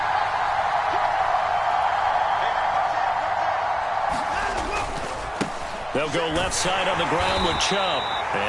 go left side on the ground with Chubb.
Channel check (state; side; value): identical; both; correlation 1.00